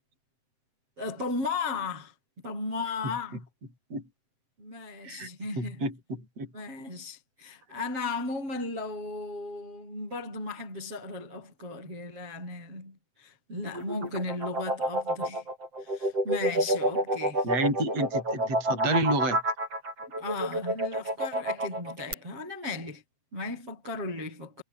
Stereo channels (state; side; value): late; left; 7.6 ms